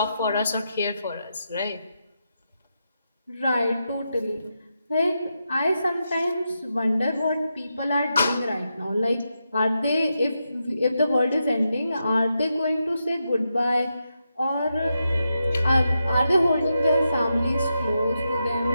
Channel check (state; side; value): inverted; both; correlation -0.86